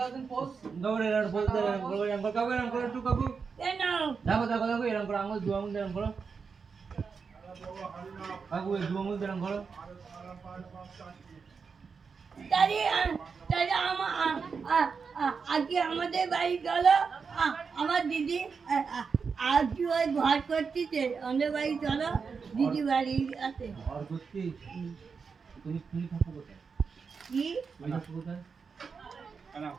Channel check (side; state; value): left; quieter; 5.5 dB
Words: দেন পোজ দৌড়ে এর পোজ দে এরকম করো এরকম করো একটু কাকু কেন দেখো এরকম করো আঙুল দু আঙুল এরকম করো কাকু এই দু আঙুল এরকম করো তাহলে আজকে আমাদের বাড়ি চলো আমার দিদি আজকে ওই ঘর করতেছে আমাদের বাড়ি চলো দিদি বাড়ি আছে আর করতে তুমি থাকো কোথায় কি তুমি থাকো কোথায় কেন